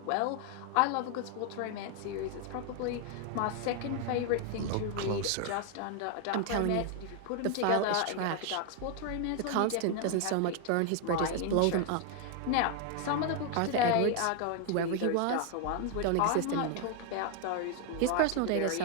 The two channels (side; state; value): both; different; correlation 0.00